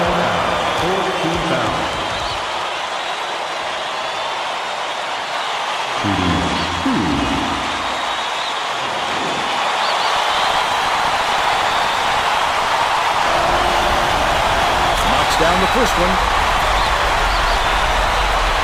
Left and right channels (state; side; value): identical; both; correlation 1.00